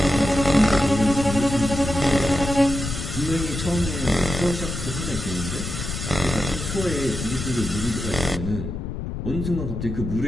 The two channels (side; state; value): left; noise; rumble, 5 dB below the sound